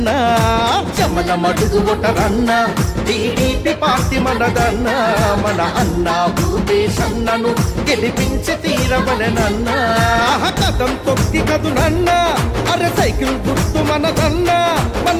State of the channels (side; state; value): both; identical; correlation 1.00